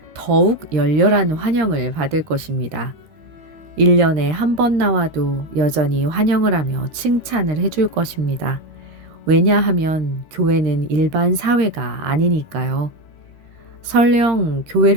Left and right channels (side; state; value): left; late; 13 ms